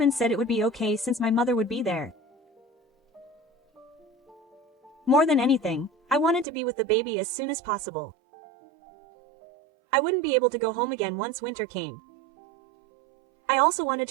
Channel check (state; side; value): drops out; left; at 6.5 s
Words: said it would be okay since my mother would be there. More than anything, I wanted to be with the baby as soon as possible. I wouldn't be able to go home again once winter came. I also wanted